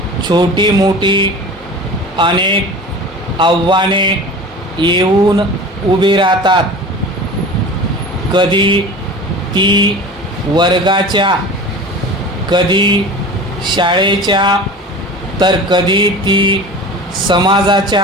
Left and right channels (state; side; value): normal; both; correlation 0.36